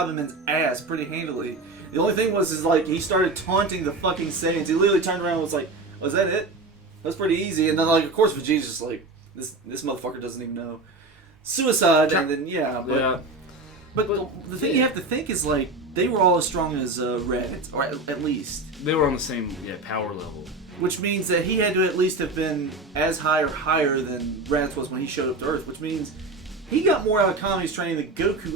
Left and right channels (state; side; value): quieter; left; 3.1 dB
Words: ass pretty handily. The only thing was, like, he started taunting the fucking Saiyans. He literally turned around and was like, "Was that it? That's pretty easy." And then, like, of course, Vegeta's just like, "This motherfucker doesn't even know." Suicide, and then But the thing you have to think is, like, they were all as strong as Raditz, or at least. They were on the same power level. Which means that he had to at least have been as high or higher than Raditz was when he showed up to Earth, which means he got more out of Kami's training than